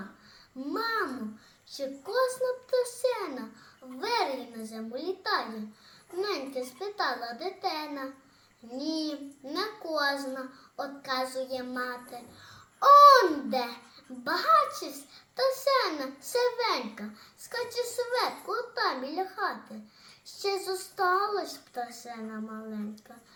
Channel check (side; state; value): both; identical; correlation 1.00